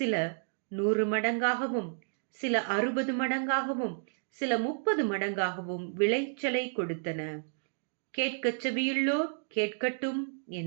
100 மடங்காகவும், சில 60 மடங்காகவும், சில 30 மடங்காகவும் விளைச்சலை கொடுத்தன. கேட்கச் செவியுள்ளோர் கேட்கட்டும்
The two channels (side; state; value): left; silent; digital silence